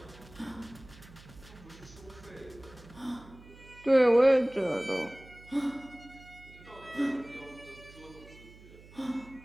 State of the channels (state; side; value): noise; right; hum, 21 dB below the sound